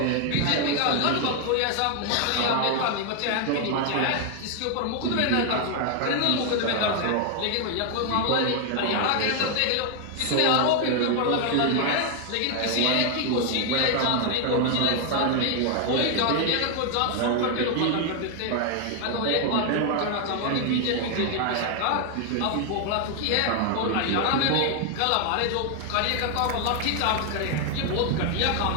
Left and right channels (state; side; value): different; both; correlation 0.00